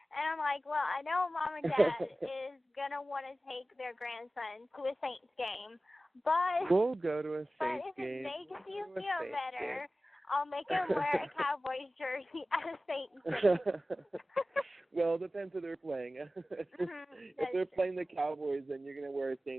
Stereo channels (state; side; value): normal; both; correlation 0.96